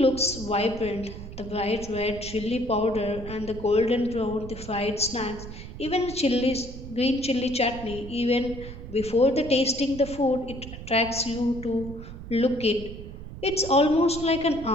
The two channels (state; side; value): noise; right; rumble, 12 dB below the sound